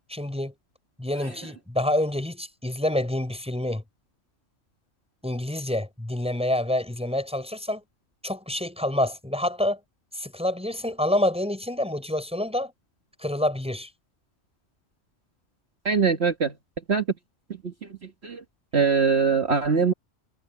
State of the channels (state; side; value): normal; both; correlation 0.31